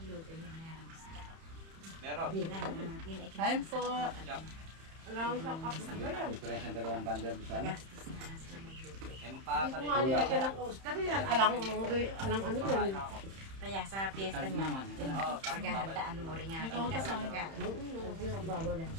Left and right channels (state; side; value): late; left; 31 ms